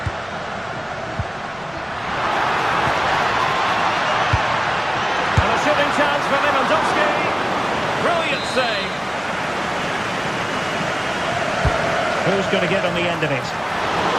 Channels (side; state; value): right; noise; rumble, 26 dB below the sound